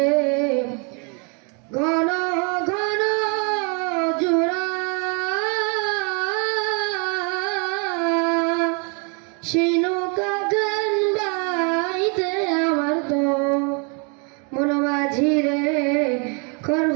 ঘন ঘন জোড়া সেই নৌকা গান বাইতে আমার তো মন মাঝিরে খর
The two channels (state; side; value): quieter; left; 35.7 dB